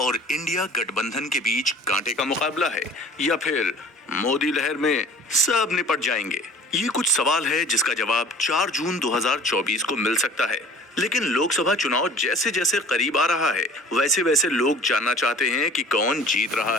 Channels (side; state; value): both; normal; correlation 0.46